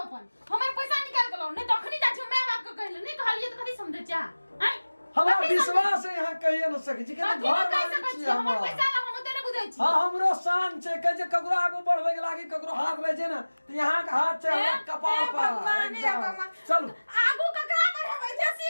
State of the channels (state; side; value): inverted; both; correlation -1.00